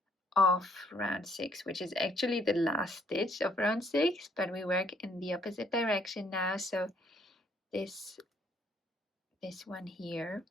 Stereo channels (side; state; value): both; normal; correlation 0.66